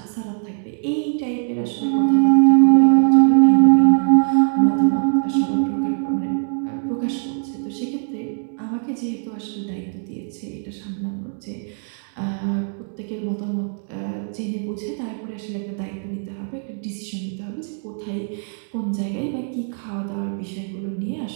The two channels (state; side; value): silent; left; digital silence